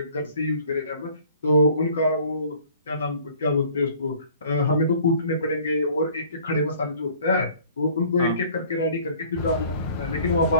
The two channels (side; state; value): both; inverted; correlation -0.53